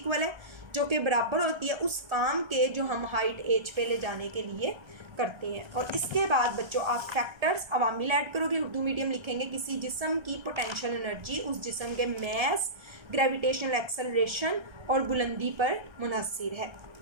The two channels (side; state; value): left; late; 1.3 ms